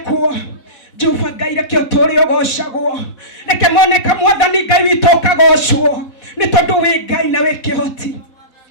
Jehova Ngai reke ũtũũre ũgocagwo, reke moneka Mwathani Ngai witũ ũkagocwo nĩ tondũ wĩ Ngai na wĩ kĩhoti.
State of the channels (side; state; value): right; late; 4.1 ms